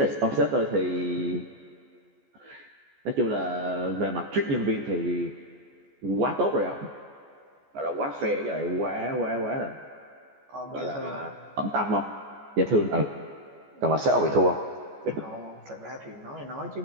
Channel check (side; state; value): left; late; 14 ms